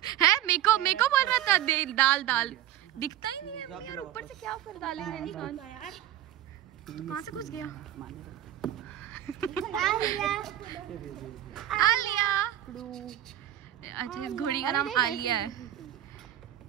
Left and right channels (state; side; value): quieter; left; 12.4 dB